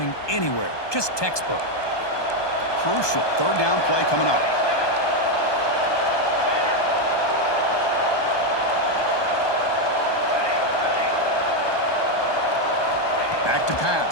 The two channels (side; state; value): right; late; 1.2 ms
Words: anywhere. Just textbook. Crucial third down play coming up. Back to